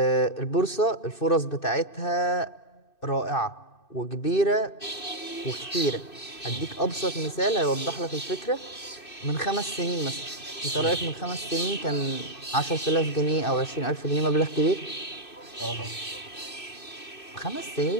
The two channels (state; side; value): late; right; 2.6 ms